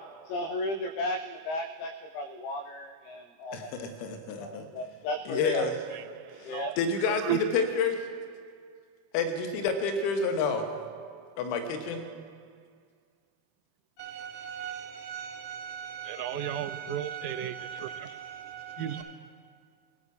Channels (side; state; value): right; late; 25 ms